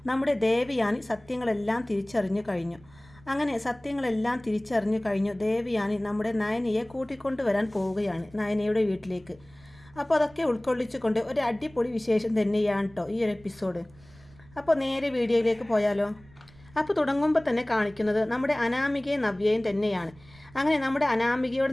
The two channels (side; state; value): right; noise; rumble, 25 dB below the sound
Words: നമ്മുടെ ദേവയാനി സത്യങ്ങളെല്ലാം തിരിച്ചറിഞ്ഞു കഴിഞ്ഞു. അങ്ങനെ സത്യങ്ങളെല്ലാം തിരിച്ചറിഞ്ഞു കഴിഞ്ഞു ദേവയാനി നമ്മുടെ നയനയെ കൂട്ടിക്കൊണ്ടുവരാൻ പോവുകയാണ് നയനയുടെ വീട്ടിലേക്ക്. അപ്പോൾ അതൊക്കെ ഉൾക്കൊള്ളിച്ചുകൊണ്ട് ഒരു അടിപൊളി വിശേഷം തന്നെയാണ് കേട്ടോ ഈ ഒരു എപ്പിസോഡ്. അപ്പോൾ നേരെ വീഡിയോയിലേക്ക് പോയാലോ. അപ്പോൾ തുടങ്ങുമ്പോൾ തന്നെ കാണിക്കുന്നത് നമ്മുടെ അനാമികയും നവ്യയും തന്നെയാണ്. അങ്ങനെ നമ്മുടെ